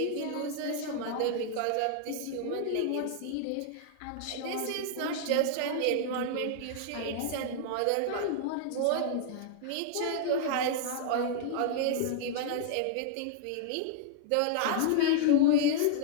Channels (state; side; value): different; both; correlation -0.01